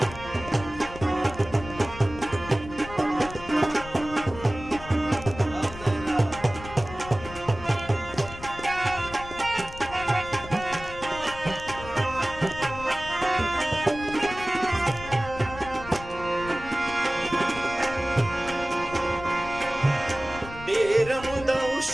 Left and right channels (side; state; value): left; noise; rumble, 14 dB below the sound